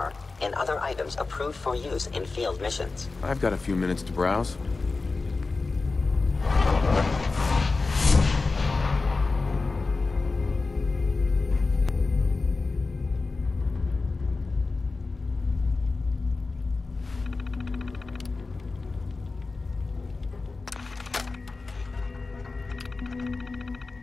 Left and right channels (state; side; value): quieter; right; 3.8 dB